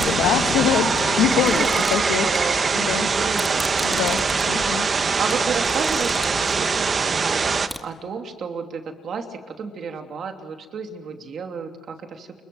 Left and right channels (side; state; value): both; normal; correlation 0.75